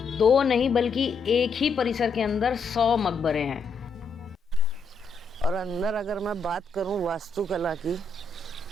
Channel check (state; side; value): quieter; right; 4.2 dB